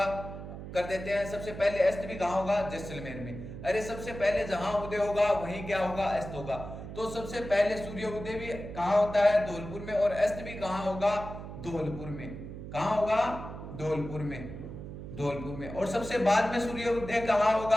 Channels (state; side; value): noise; right; hum, 10 dB below the sound